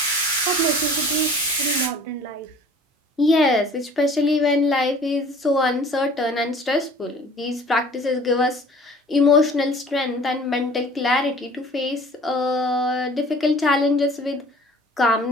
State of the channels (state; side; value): normal; both; correlation 0.48